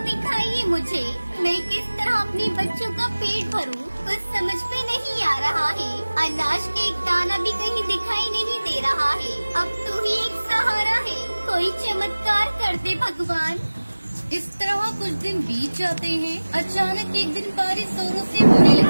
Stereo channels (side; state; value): both; inverted; correlation -1.00